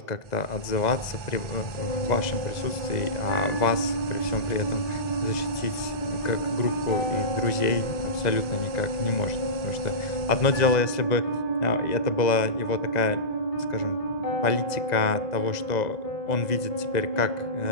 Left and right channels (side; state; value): right; late; 2.0 ms